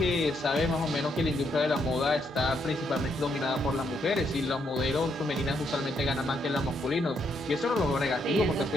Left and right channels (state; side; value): normal; both; correlation 0.76